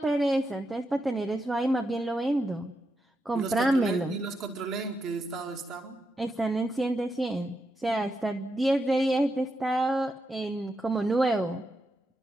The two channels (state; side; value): normal; both; correlation 0.85